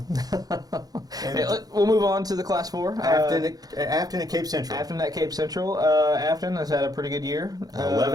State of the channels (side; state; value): left; late; 0.18 ms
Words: We'll move on to the Class 4. Afton and Cape Central. Afton at Cape Central. Afton has had a pretty good year.